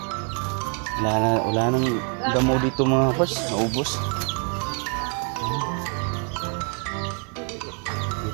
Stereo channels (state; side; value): quieter; left; 36.2 dB